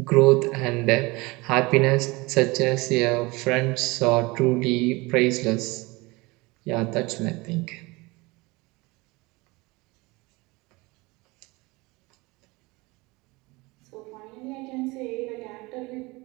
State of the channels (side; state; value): left; quieter; 23.8 dB